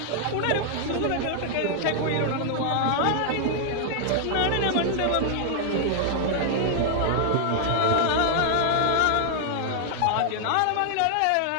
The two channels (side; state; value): both; different; correlation -0.01